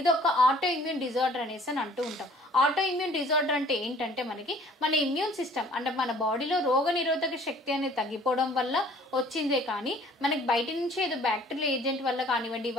ఒక ఆటో ఇమ్యూన్ డిజార్డర్ అనేసి అని అంటూ ఉంటాం. ఆటో ఇమ్యూన్ డిజార్డర్ అంటే ఏంటంటే మనకి మన ఇమ్యూన్ సిస్టమ్ అంటే మన బాడీలో రోగ నిరోధక శక్తి అనేది తగ్గిపోవడం వల్ల వచ్చిందే కానీ మనకి బయట నుంచి ఏదో బ్యాక్టీరియల్ ఏజెంట్ వల్ల కానివ్వండి,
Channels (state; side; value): normal; both; correlation 0.53